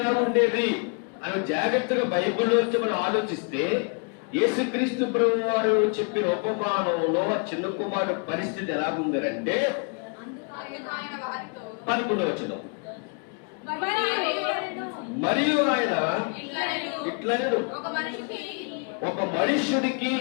ఎలా ఉండేది అని జాగ్రత్తగా బైబిల్లోంచి మనం ఆలోచిస్తే యేసుక్రీస్తు ప్రభు వారు చెప్పిన ఉపమానంలో ఆ చిన్న కుమారుడు పరిస్థితి ఎలా ఉందంటే 11వ వచనం, మరియు ఆయన ఇట్లనెను, ఒక మనుష్యుడికి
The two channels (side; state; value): right; quieter; 38.2 dB